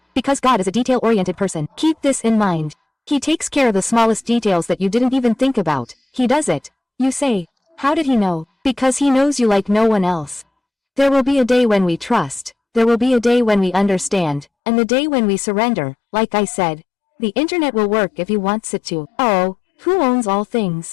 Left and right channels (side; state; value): right; drops out; at 14.5 s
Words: Because God is a detail-oriented person. Keep this in mind. He takes care of the smallest details that you didn't even think about. He does it. You say, how did he know? Because he knows you like no one else. There will be a day when we trust. There will be a day when we understand. And the day when we surrender, like I said. The internet will work if he wants it to. Oh, who owns all